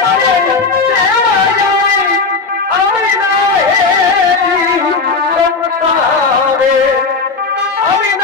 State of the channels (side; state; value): right; quieter; 4.3 dB